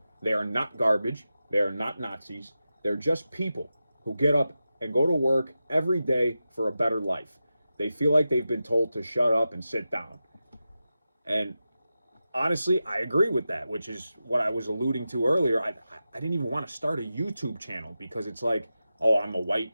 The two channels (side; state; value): both; inverted; correlation -0.92